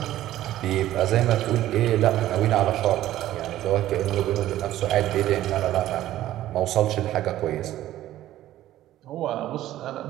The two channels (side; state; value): left; quieter; 13.8 dB